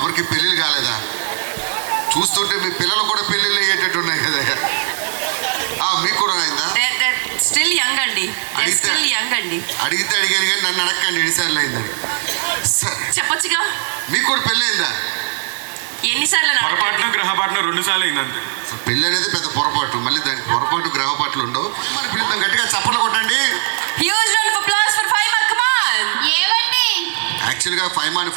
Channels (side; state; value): left; silent; digital silence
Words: పెళ్ళిళ్ళు కాలేదా? చూస్తుంటే మీ పిల్లలు కూడా పెళ్ళిళ్ళు అయ్యేటట్టు ఉన్నాయి కదా. మీకు కూడా అయిందా? స్టిల్ యంగ్ అండి, స్టిల్ యంగ్ అండి. అడిగితే అడిగాను కానీ నన్ను అడగండి ఎన్నిసార్లు అయిందని. చెప్పొచ్చుగా. మీకు కూడా పెళ్ళి అయిందా? ఎన్నిసార్లు? పొరపాటున గ్రహపాటున 2 సార్లు అయిందంతే. పెళ్ళి అనేది పెద్ద పొరపాటు, మళ్ళీ దానికి పొరపాటు గ్రహపాట్లు ఉండవు. మరి పిల్లలు గట్టిగా చప్పట్లు కొట్టండి. Huge round of applause for Faima. Come on. ఏమండి? యాక్చువల్గా ఫైమాని